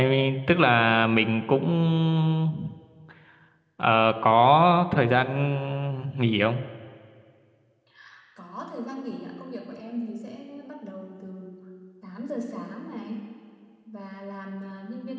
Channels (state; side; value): identical; both; correlation 1.00